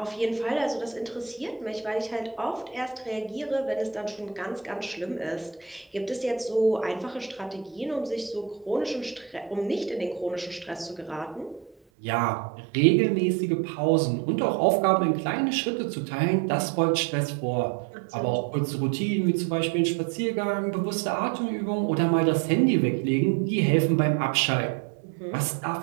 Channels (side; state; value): left; drops out; at 11.8 s